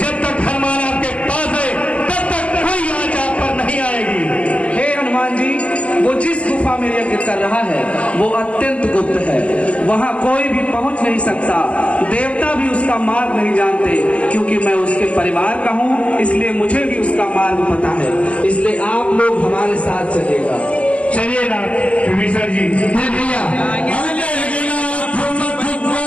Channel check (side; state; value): right; late; 0.063 ms